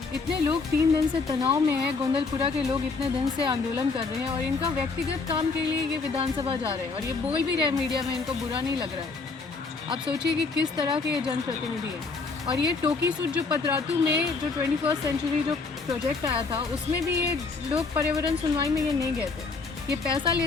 इतने लोग 3 दिन से तनाव में हैं, गोंदलपुरा के लोग इतने दिन से आंदोलन कर रहे हैं और इनका व्यक्तिगत काम के लिए ये विधानसभा जा रहे हैं और ये बोल भी रहे हैं मीडिया में, इनको बुरा नहीं लग रहा है। आप सोचिए कि किस तरह के ये जनप्रतिनिधि हैं। और ये टोकी सूट जो पतरातू में जो 21st सेंचुरी जो प्रोजेक्ट आया था, उसमें भी ये लोग पर्यावरण सुनवाई में ये नहीं गए थे। ये पैसा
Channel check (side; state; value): right; quieter; 4.2 dB